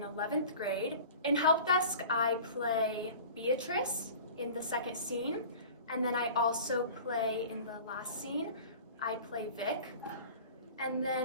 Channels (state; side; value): inverted; both; correlation -0.41